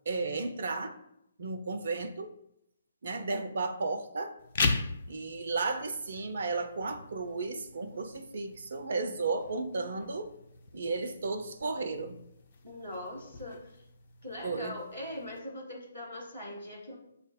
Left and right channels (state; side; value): inverted; both; correlation -0.74